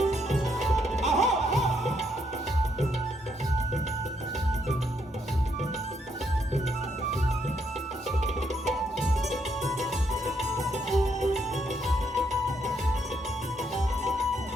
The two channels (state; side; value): normal; both; correlation 0.75